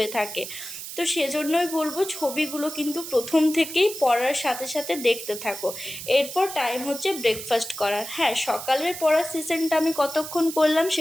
থাকে। তো সেজন্যই বলবো ছবিগুলো কিন্তু প্রথম থেকেই পড়ার সাথে সাথে দেখতে থাকো। এরপর টাইম হচ্ছে ব্রেকফাস্ট করার। হ্যাঁ, সকালের পড়ার সেশনটা আমি কতক্ষণ করলাম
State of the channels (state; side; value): noise; right; hiss, 9 dB below the sound